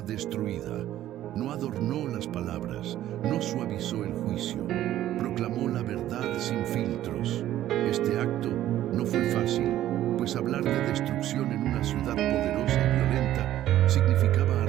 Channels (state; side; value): quieter; left; 13.0 dB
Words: destruida. No adornó las palabras, no suavizó el juicio, proclamó la verdad sin filtros. Este acto no fue fácil, pues hablar de destrucción en una ciudad poderosa y violenta significaba